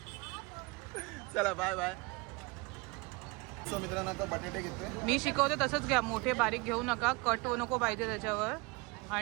चला बाय बाय. सो मित्रांनो आता बटाटे घेतोय. मी शिकवते तसंच घ्या. मोठे बारीक घेऊ नका. कट नको पाहिजे त्याच्यावर.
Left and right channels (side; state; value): left; quieter; 26.5 dB